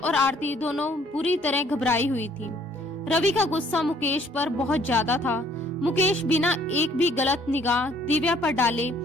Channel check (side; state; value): both; normal; correlation 0.61